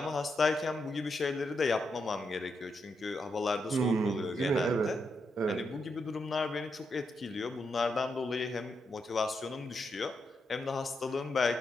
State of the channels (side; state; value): both; normal; correlation 0.83